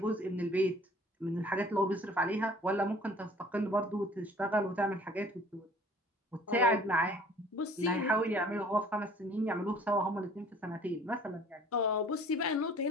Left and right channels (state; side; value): normal; both; correlation 0.52